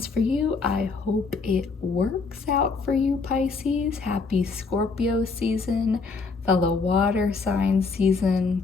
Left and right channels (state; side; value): quieter; right; 4.5 dB